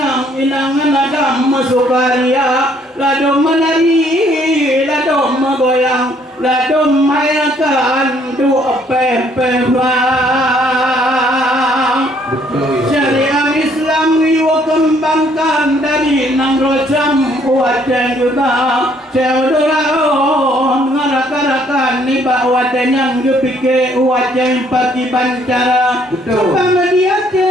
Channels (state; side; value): normal; both; correlation 0.65